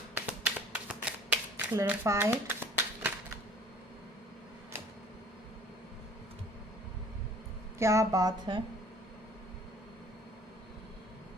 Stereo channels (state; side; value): normal; both; correlation 0.51